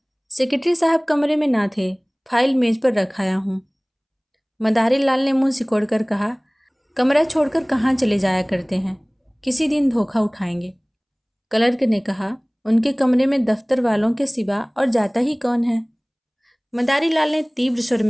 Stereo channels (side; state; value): both; identical; correlation 1.00